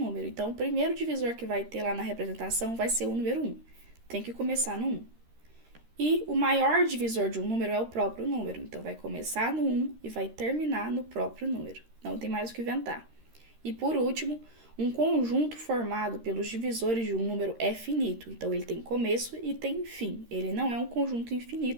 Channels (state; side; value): late; left; 13 ms